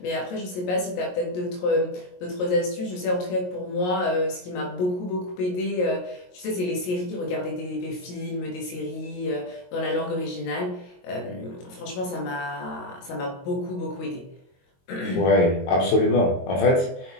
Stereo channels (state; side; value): late; right; 22 ms